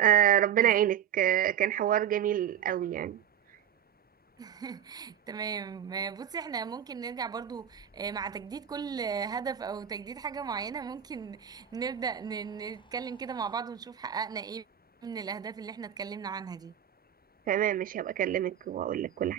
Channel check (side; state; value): left; quieter; 9.6 dB